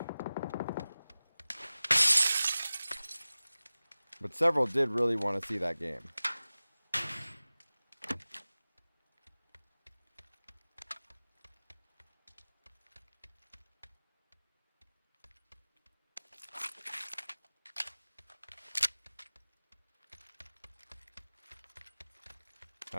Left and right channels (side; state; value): both; inverted; correlation -0.97